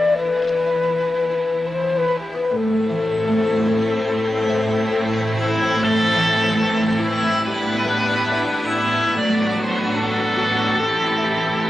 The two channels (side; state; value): both; normal; correlation 0.91